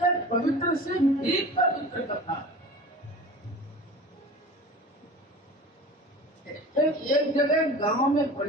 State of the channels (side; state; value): both; normal; correlation 0.37